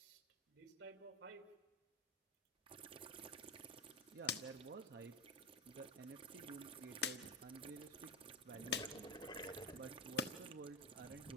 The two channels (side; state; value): both; normal; correlation 0.17